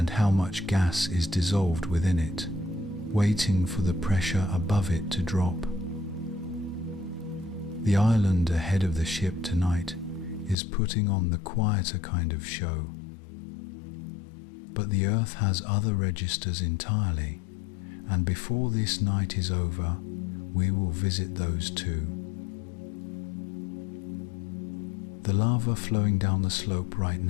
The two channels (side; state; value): right; drops out; at 10.6 s